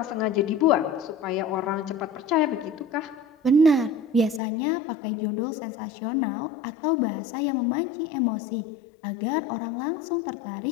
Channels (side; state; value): right; drops out; at 4.4 s